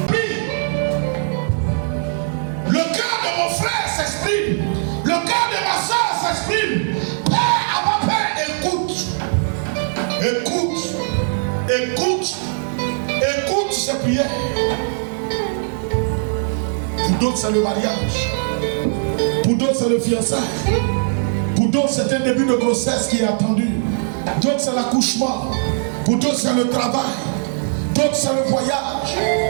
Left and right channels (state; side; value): silent; left; 66 dB below the other